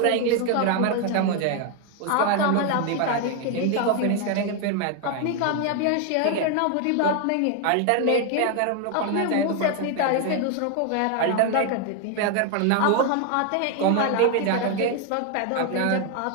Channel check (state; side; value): different; both; correlation 0.01